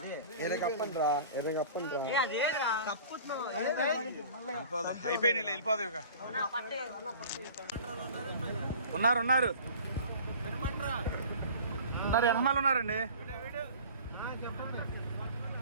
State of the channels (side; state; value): both; inverted; correlation -0.42